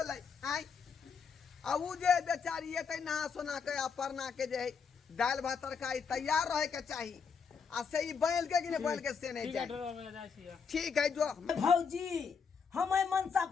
आ उ जे बेचारी एते नहा सोना के आ परना के जे दाल भात तरकारी तैयार रहे के चाहिए आ से ई बैल के कि नहीं बैल के से नहीं जाए। ठीक है जो भौजी हम मनसा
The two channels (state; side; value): quieter; right; 6.0 dB